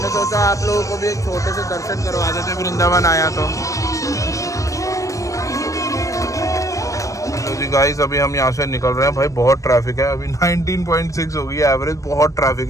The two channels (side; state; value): right; late; 0.16 ms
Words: सोचा आप लोगों को भी एक छोटे से दर्शन करवा देते, वृंदावन आया तो जी गाइस। अभी हम यहाँ से निकल रहे हैं भाई, बहुत ट्रैफिक है। अभी 19.6 हो गई है एवरेज, बहुत ट्रैफिक